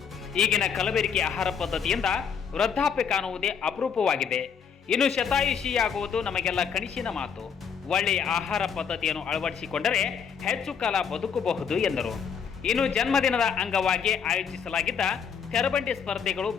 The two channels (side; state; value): right; quieter; 7.0 dB